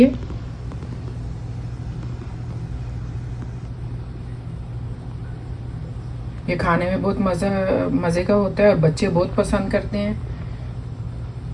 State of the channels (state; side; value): identical; both; correlation 1.00